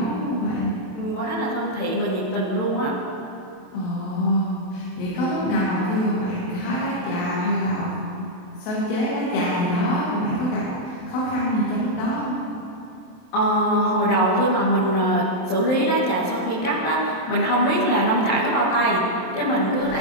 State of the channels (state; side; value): late; right; 27 ms